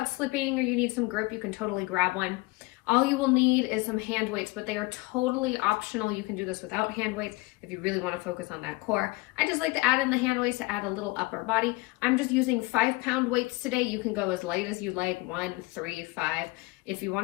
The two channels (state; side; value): quieter; right; 23.8 dB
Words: slipping or you need some grip, you can totally grab one. All you will need is some hand weights, but they are totally optional. You can do this without hand weights if you really want to focus on that core. I just like to add in the hand weights to add a little upper body. I'm just using 5-pound weights today. You can go as light as you like, 1, 3, 5. If you